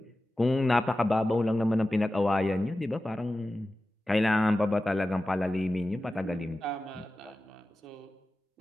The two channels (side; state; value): both; normal; correlation 0.94